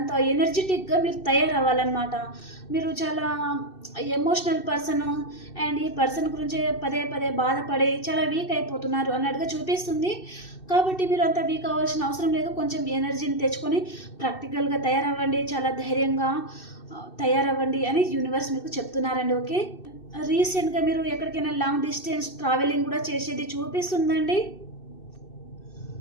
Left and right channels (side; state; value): right; late; 2.6 ms